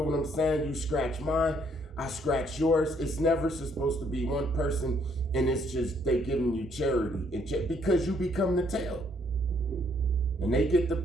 what I'm saying? You scratch mine, I scratch yours. It's never supposed to be one person and it's just they giving you charity because you become the tail. And they get the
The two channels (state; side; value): normal; both; correlation 0.68